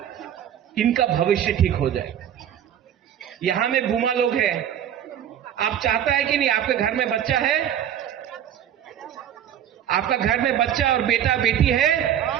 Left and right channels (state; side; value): quieter; left; 10.0 dB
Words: इनका भविष्य ठीक हो जाए। यहां में बुमा लोग हैं, आप चाहता है कि नहीं आपके घर में बच्चा है? आपका घर में बच्चा और बेटा बेटी